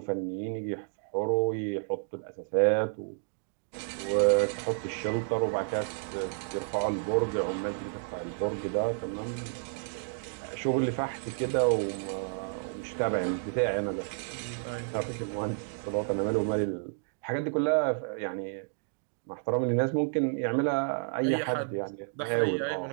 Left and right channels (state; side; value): silent; left; digital silence